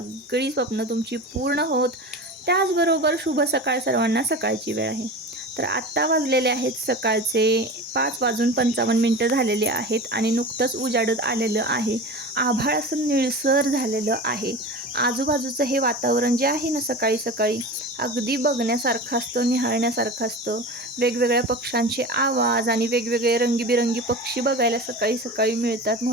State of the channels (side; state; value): both; normal; correlation 0.31